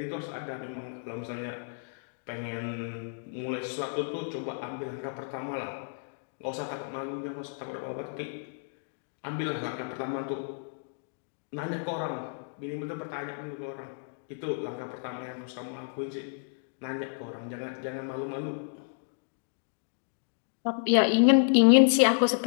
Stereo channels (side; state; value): right; silent; digital silence